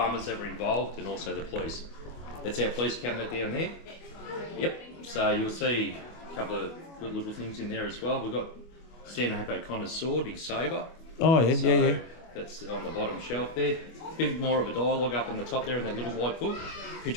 that were involved, and also the police. That's our police cabinet down there. Yep, so you'll see a couple of good little things in there as well. We've got Stanhope O'Connor's sword, his sabre. Oh, yeah, So yeah. that's on the bottom shelf there. A bit more of a dialogue up on the top there in that little white book.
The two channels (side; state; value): right; late; 25 ms